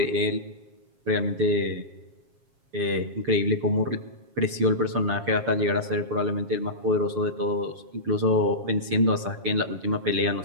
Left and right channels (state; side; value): late; left; 7.4 ms